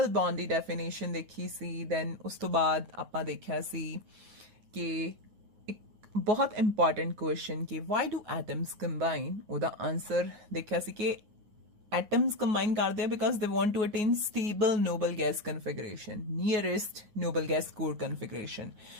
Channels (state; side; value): late; left; 9.5 ms